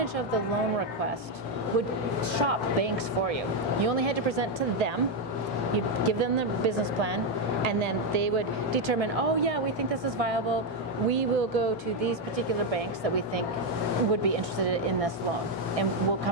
of the loan request, would shop banks for you. You only had to present to them, You give them the business plan, and then they would determine, oh yeah, we think this is viable. We will go to these particular banks that we think would be interested in this loan, and we'll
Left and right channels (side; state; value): both; normal; correlation 0.04